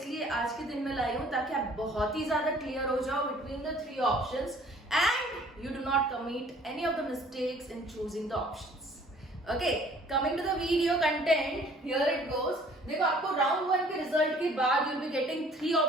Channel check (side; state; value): both; normal; correlation 0.55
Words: आज के दिन में लाई हूं ताकि आप बहुत ही ज्यादा क्लियर हो जाओ between the 3 options and you do not commit any of the mistakes in choosing the options. Okay, coming to the video content, here it goes. देखो, आपको राउंड 1 के रिजल्ट के बाद you will be getting 3